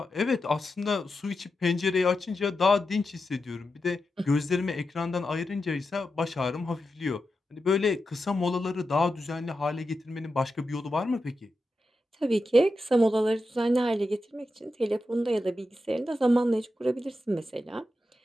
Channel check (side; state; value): both; normal; correlation 0.89